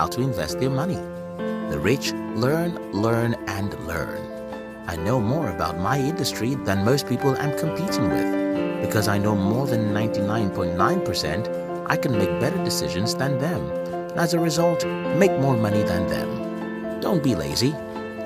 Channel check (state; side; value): identical; both; correlation 1.00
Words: to invest their money. The rich learn, learn, and learn. I know more about my industry than most people I'm competing with. Because I know more than 99.9%, I can make better decisions than them, and as a result, make more money than them. Don't be lazy.